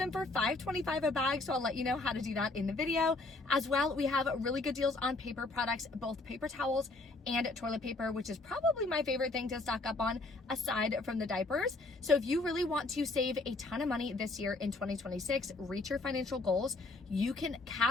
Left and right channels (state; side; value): quieter; right; 3.2 dB